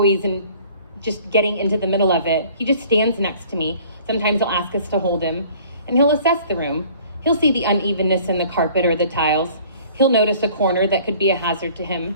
and just getting into the middle of it, he just stands next to me. Sometimes he'll ask us to hold him, and he'll assess the room. He'll see the unevenness in the carpet or the tiles. He'll notice a corner that could be a hazard to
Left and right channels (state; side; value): inverted; both; correlation -0.53